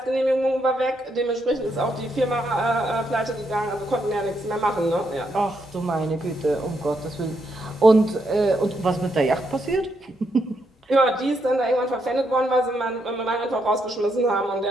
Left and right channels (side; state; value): both; normal; correlation 0.78